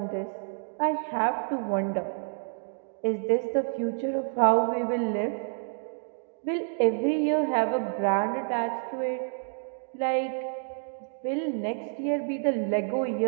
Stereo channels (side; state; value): left; silent; digital silence